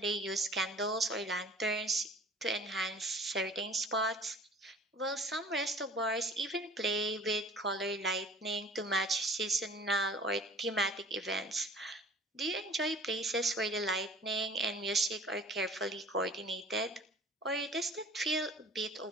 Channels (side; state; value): both; normal; correlation 0.48